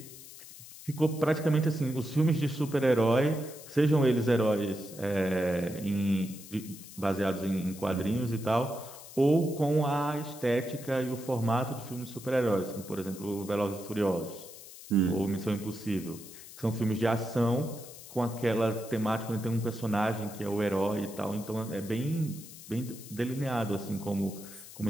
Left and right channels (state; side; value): noise; left; hiss, 16 dB below the sound